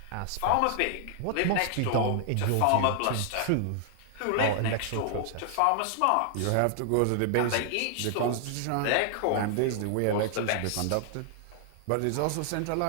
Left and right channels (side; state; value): both; different; correlation 0.00